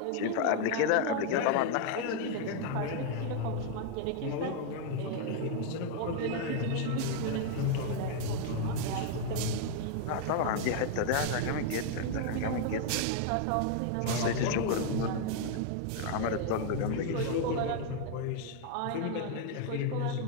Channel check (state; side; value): different; both; correlation 0.00